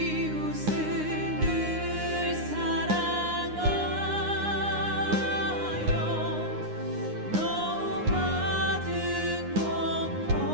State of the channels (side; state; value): left; late; 9.7 ms